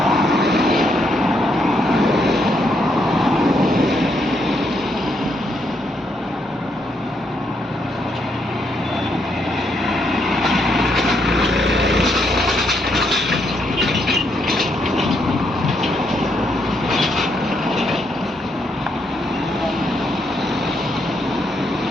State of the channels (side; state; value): both; normal; correlation 0.76